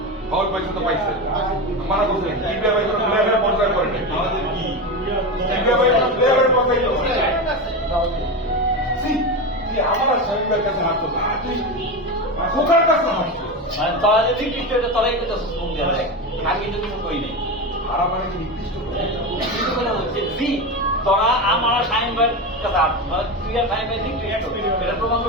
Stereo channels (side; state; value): both; normal; correlation 0.19